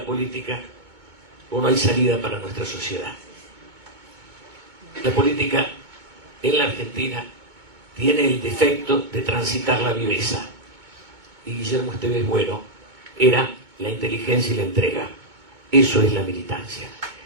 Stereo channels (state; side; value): late; left; 2.2 ms